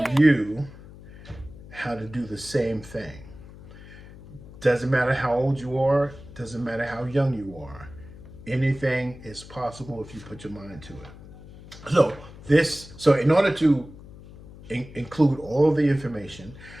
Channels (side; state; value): left; noise; hum, 18 dB below the sound